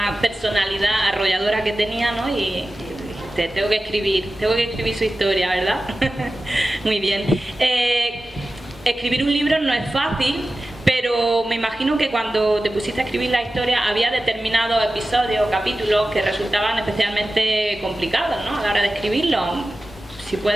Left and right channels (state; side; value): normal; both; correlation 0.95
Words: personalidad arrolladora que tenía, ¿no? Y tengo que escribir su historia, ¿verdad? Muy bien. Escribir un libro no es fácil, pero me imagino que cuando te pusiste a escribir la historia había determinados episodios o capítulos que resultaban especialmente complicados, ¿no? A la hora de escribirlo. Si